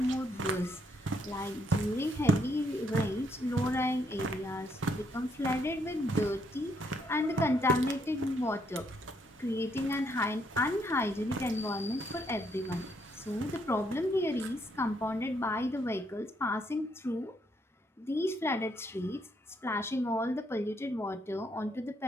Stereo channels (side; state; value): both; normal; correlation 0.73